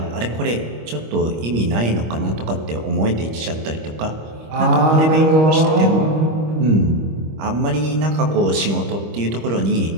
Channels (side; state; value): left; late; 25 ms